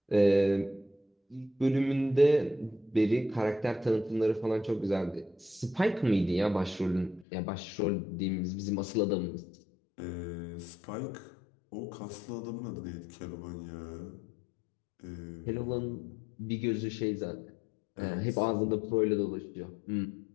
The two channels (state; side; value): drops out; right; at 7.2 s